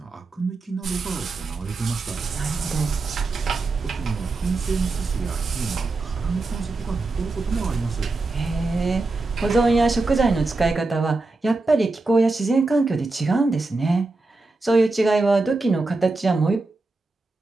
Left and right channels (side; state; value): left; quieter; 3.4 dB